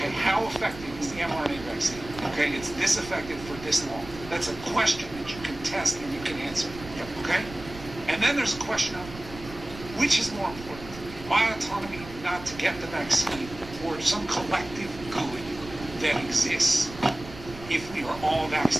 how effective is the mRNA vaccine? Okay, it's this effective for this long. That's a question that you can test and you can answer. Okay? And then there's a question of which is more important? My autonomy not to get the vaccine or some collective good that exists if we are all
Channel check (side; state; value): right; noise; rumble, 15 dB below the sound